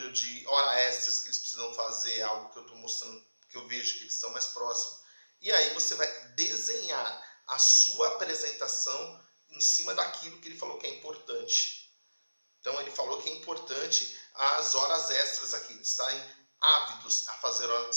de horas extras que eles precisam fazer, algo que eu estou mostrando, que eu vejo que eles estão mais próximos. E aí você vai desenhar a sua apresentação em cima daquilo que ele falou que é importante. Então ele falou que é importante as horas extras aqui, eles estarem ávidos a fazer horas,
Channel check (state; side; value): inverted; both; correlation -1.00